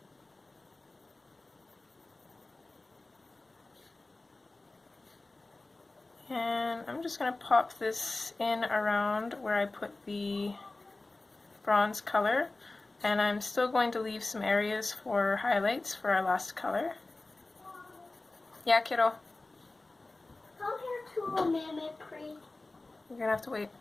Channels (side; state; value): right; quieter; 3.1 dB